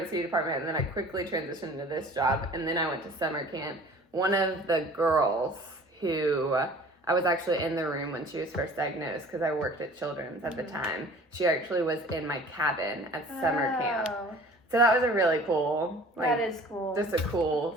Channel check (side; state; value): both; normal; correlation 0.47